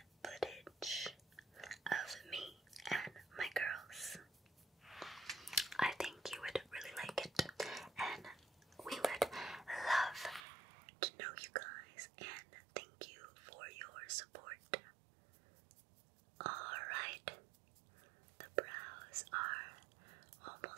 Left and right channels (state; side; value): drops out; left; at 10.5 s